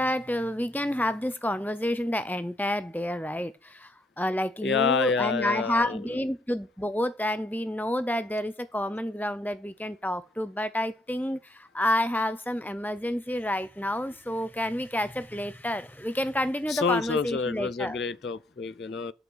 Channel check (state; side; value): normal; both; correlation 0.72